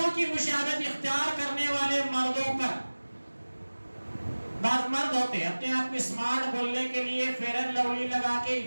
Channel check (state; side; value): inverted; both; correlation -1.00